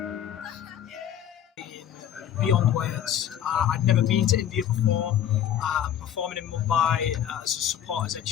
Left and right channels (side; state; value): right; quieter; 10.2 dB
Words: Beyond words. I'd never been to India before. Performing in Mumbai as a support for Ed